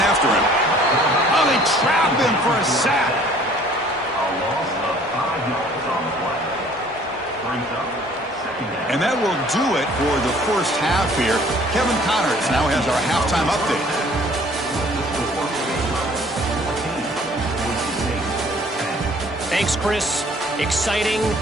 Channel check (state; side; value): normal; both; correlation 0.55